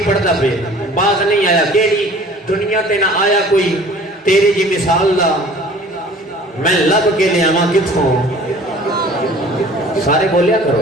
پڑھتا پہ باز نہیں آیا کیڑی دنیا تے نہ آیا کوئی تیری جی مثال دا میں لب کے لے آواں کتھوں سارے بولیا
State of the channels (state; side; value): normal; both; correlation 0.48